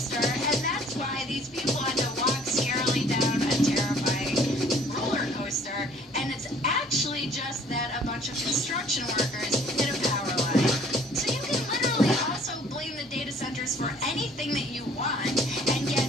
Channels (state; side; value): normal; both; correlation 0.56